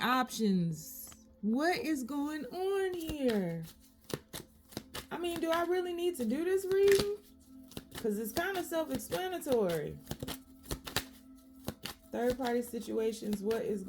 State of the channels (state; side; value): identical; both; correlation 1.00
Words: What is going on here? I mean, do I really need to do this reading? Because it's kind of self-explanatory. Third party situations, what is